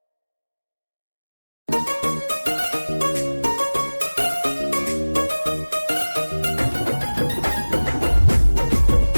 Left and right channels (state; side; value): inverted; both; correlation -1.00